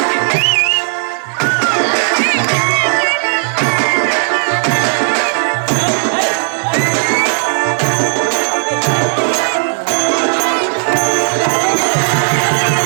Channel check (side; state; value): left; silent; digital silence